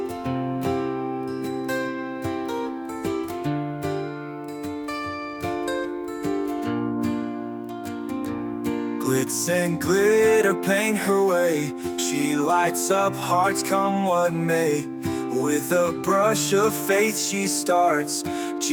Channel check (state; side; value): identical; both; correlation 1.00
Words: Glitz and glitter paint her way. She lights up hearts come what may. With a brush of faith she starts.